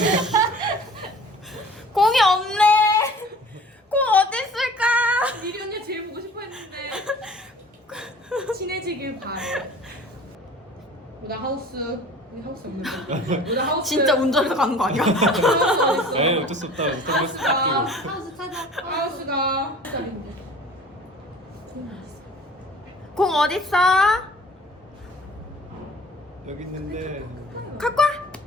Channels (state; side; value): normal; both; correlation 0.46